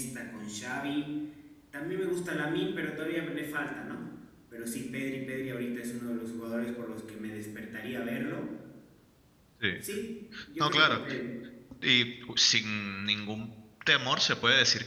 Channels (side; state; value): both; identical; correlation 1.00